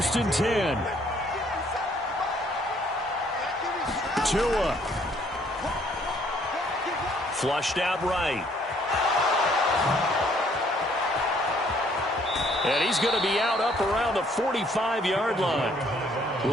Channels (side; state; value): both; normal; correlation 0.64